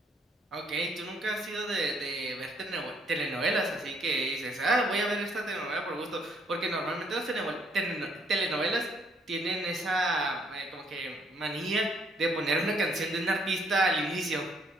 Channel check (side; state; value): both; normal; correlation 0.68